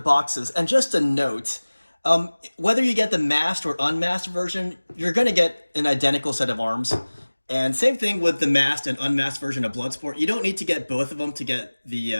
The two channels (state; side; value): inverted; both; correlation -1.00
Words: And just a note, whether you get the masked or unmasked version, you're going to get an identical set of arms. And same thing with the masked and unmasked version of Bloodsport. You don't need to get both of them to get